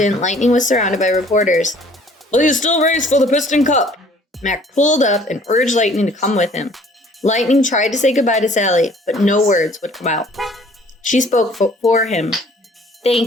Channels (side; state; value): both; normal; correlation 0.55